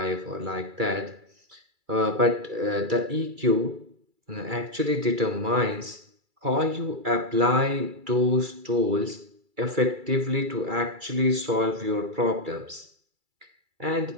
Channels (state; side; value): late; left; 2.3 ms